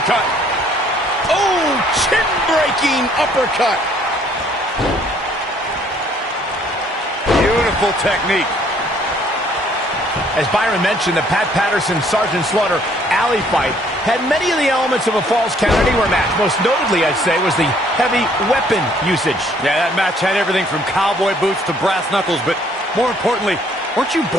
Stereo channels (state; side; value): normal; both; correlation 0.62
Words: Oh, chin-breaking uppercut. Beautiful technique. As Byron mentioned, the Pat Patterson-Sergeant Slaughter alley fight had many of the elements of a Falls Count Anywhere match. Most notably, I'd say, was the heavy weapon usage. Yeah, that match had everything from cowboy boots to brass knuckles, but more importantly, weren't you